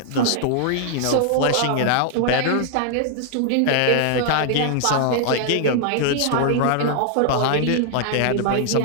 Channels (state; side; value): different; both; correlation 0.00